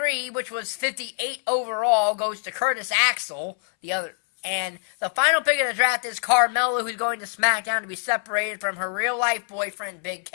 which was 58 overall, goes to Curtis Axel, the other. And the final pick of the draft is Carmella, who's going to SmackDown to be separated from her real-life boyfriend, Big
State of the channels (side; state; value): right; silent; 62 dB below the other